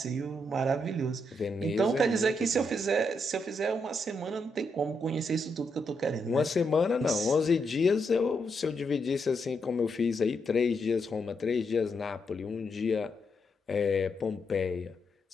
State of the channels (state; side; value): normal; both; correlation 0.80